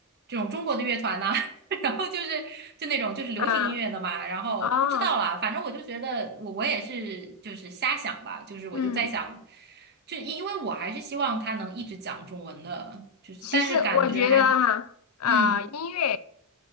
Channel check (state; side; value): normal; both; correlation 0.00